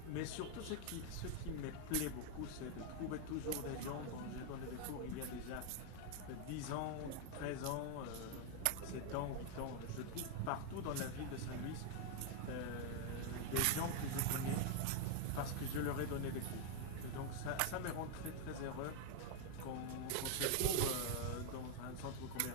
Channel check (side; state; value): both; different; correlation 0.01